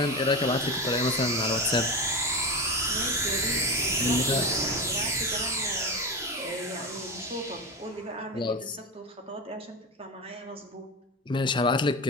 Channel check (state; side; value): normal; both; correlation 0.22